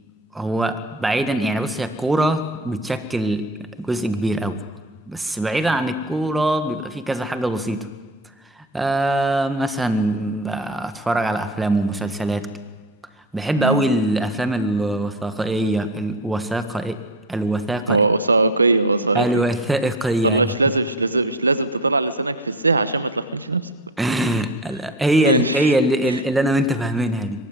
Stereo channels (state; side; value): normal; both; correlation 0.27